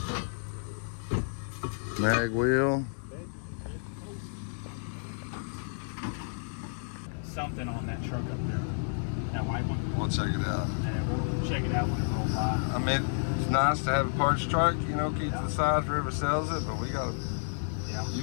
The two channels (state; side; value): silent; right; digital silence